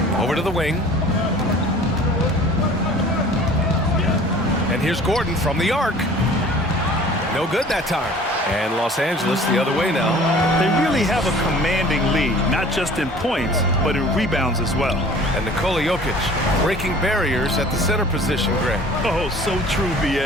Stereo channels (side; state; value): both; normal; correlation 0.47